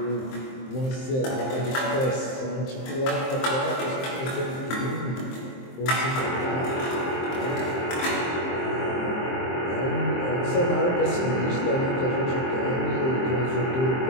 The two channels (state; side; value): late; right; 23 ms